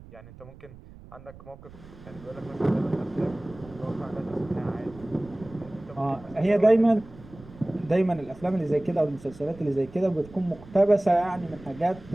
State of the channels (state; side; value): noise; right; rumble, 19 dB below the sound